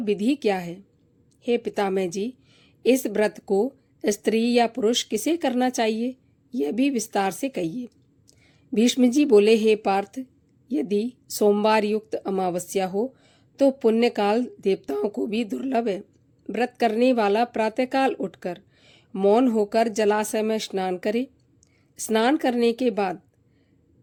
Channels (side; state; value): both; identical; correlation 1.00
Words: विधि क्या है? हे पितामह जी, इस व्रत को स्त्री या पुरुष किसे करना चाहिए, यह भी विस्तार से कहिए। भीष्म जी बोले, हे पार्थ, यदि सोमवार युक्त अमावस्या हो तो पुण्यकाल देवताओं को भी दुर्लभ है। व्रत करने वाला प्रातःकाल उठकर मौन होकर जलाशय में स्नान करे। स्नान करने के बाद